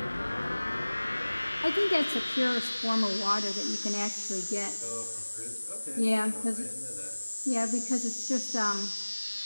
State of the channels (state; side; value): inverted; both; correlation -1.00